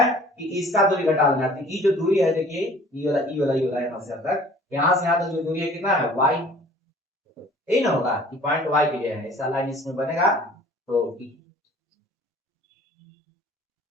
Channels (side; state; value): both; normal; correlation 0.50